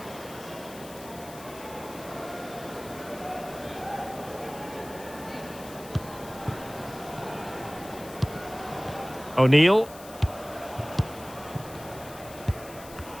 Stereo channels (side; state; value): left; noise; hiss, 17 dB below the sound